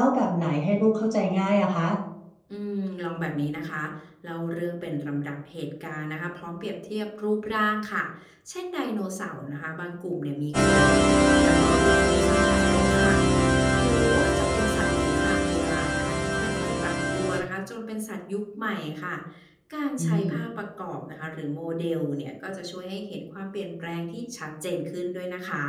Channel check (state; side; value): identical; both; correlation 1.00